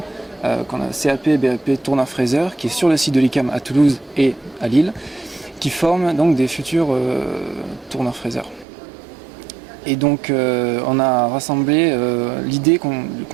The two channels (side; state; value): left; drops out; at 8.7 s